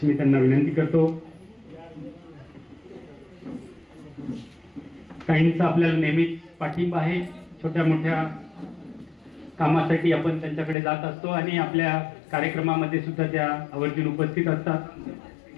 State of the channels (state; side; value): drops out; right; at 10.8 s